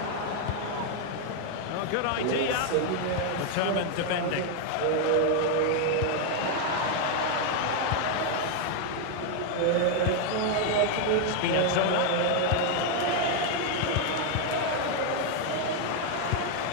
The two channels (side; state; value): both; different; correlation 0.01